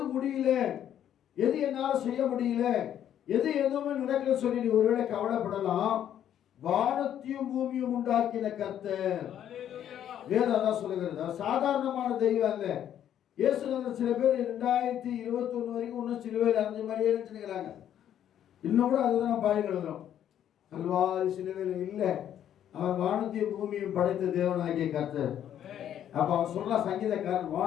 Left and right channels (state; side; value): quieter; right; 10.4 dB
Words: முடியல, எது என்னால செய்ய முடியல, எது எதுவுமே நடக்கல சொல்லி நீ ஒருவேளை கவலைப்படலாம். வானத்தையும் பூமியும் உண்டாக்கின கர்த்தர், வேதம் அதான் சொல்லுகிறது. சாதாரணமான தெய்வம் அல்ல. இயேசுநாதர் சில பேர் 2021 வரைக்கும் இன்னும் சிலுவையில் அரைஞ்ச மாதிரியே நினைச்சுக்கிறாங்க. இன்னும் கூட அதுதான் பாடி எழுதுறோம். கல்வாரி சிலுவையில் இல்லை, அவர் வானத்தையும் பூமியும் படைத்த தேவனாகிய கர்த்தர். அப்ப அவர் சொல்ற சங்கீதக்காரன்,